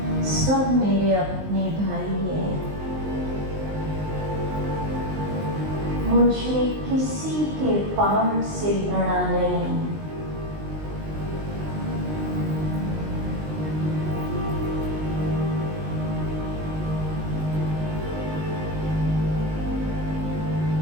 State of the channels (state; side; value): late; left; 19 ms